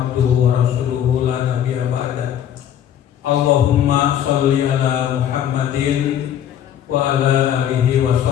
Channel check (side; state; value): right; quieter; 10.1 dB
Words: wa rasuluhu la nabiyya ba'da. Allahumma sholli ala Muhammadin wa ala alihi wa